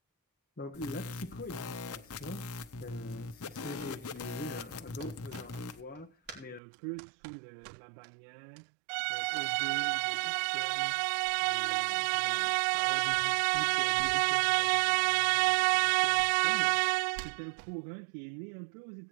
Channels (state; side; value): drops out; left; at 6.6 s